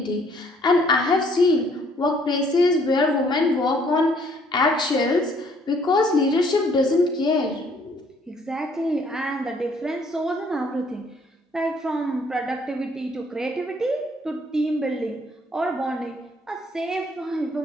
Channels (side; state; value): both; normal; correlation 0.63